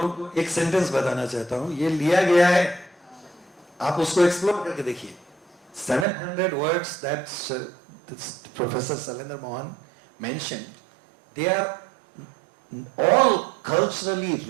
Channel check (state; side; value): drops out; left; at 6.1 s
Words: को एक सेंटेंस बताना चाहता हूँ. ये लिया गया है आप उसको एक्सप्लोर करके देखिए. 700 words that this Professor Salendra Mohan mentioned, they are all culturally